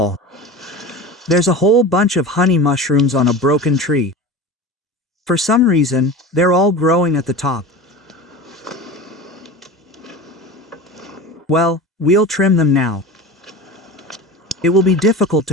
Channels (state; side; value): normal; both; correlation 0.31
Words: There's a whole bunch of honey mushrooms on a broken tree. For some reason, they're all growing at the top. Well, we'll trim them now. It will be difficult